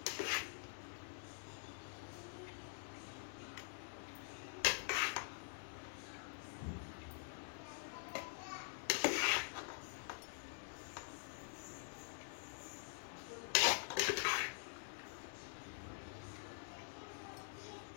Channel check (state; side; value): silent; right; digital silence